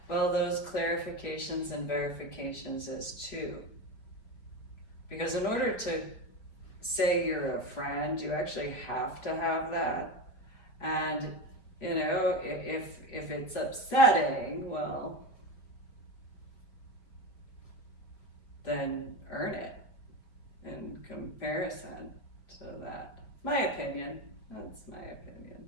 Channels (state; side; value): late; right; 5.3 ms